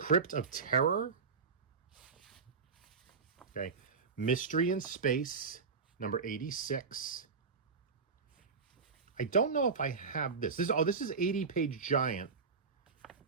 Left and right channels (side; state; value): left; quieter; 5.2 dB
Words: of Terror. Okay. Mystery in Space, number 86. I don't know if I have this. This is 80-page giant,